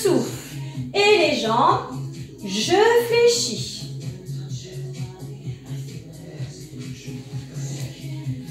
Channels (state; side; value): identical; both; correlation 1.00